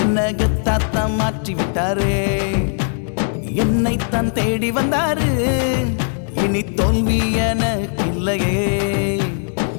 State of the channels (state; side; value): silent; right; 67 dB below the other